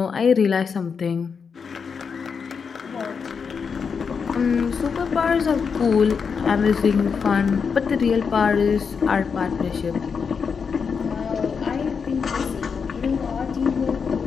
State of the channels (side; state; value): right; quieter; 5.9 dB